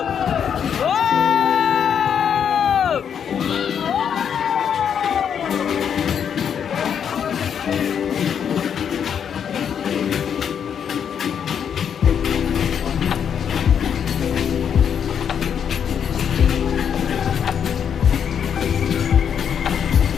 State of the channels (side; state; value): right; quieter; 8.0 dB